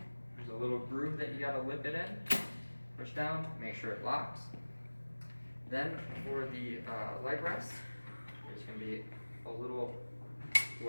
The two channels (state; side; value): inverted; both; correlation -1.00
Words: there's a little groove that you gotta lip it in. Push down, make sure it locks. Then for the leg rest, there's going to be a little